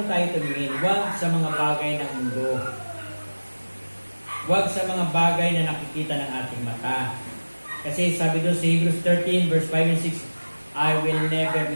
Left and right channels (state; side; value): inverted; both; correlation -1.00